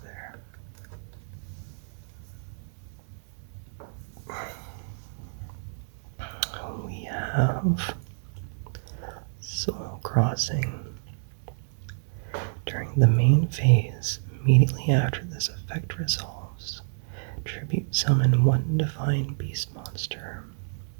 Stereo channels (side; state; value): left; silent; 59 dB below the other